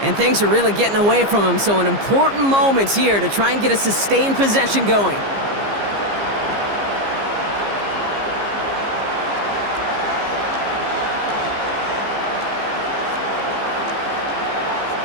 And things are really getting away from him, so an important moment here to try and get a sustained possession going.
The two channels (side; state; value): left; late; 15 ms